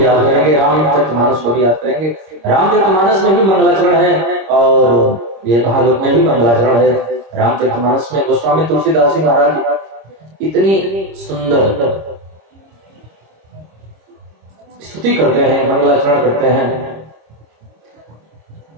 याद करेंगे, रामचरितमानस को भी याद करेंगे। रामचरितमानस में भी मंगलाचरण है और ये भागवत में भी मंगलाचरण है। रामचरितमानस में गोस्वामी तुलसीदास जी महाराज इतनी सुंदर स्तुति करते हैं, मंगलाचरण करते हैं।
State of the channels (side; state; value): left; late; 26 ms